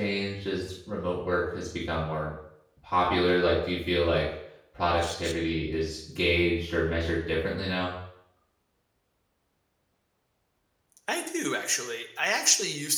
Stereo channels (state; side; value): identical; both; correlation 1.00